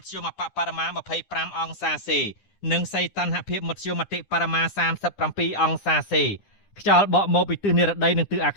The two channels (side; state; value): right; late; 9.9 ms